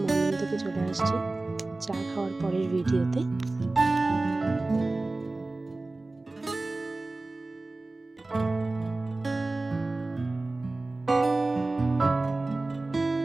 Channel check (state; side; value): quieter; left; 3.1 dB